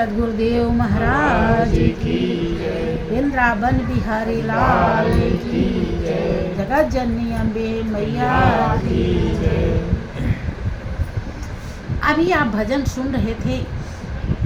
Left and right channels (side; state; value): both; identical; correlation 1.00